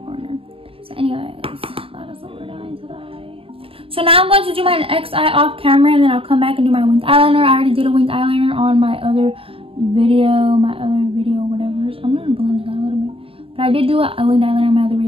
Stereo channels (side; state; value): left; late; 0.27 ms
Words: So anyways, that is what we're doing today. So now I'm going to do my next eye off camera, and then I'll come back and do my winged eyeliner. I already did a winged eyeliner on my other video, whatever. I'm going to blend it out a little bit. But I did do a winged eyeliner on my other